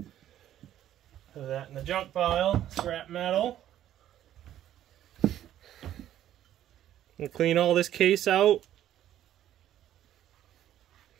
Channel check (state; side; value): quieter; left; 11.9 dB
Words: Put that in the junk pile, scrap metal. I'm gonna clean all this case out.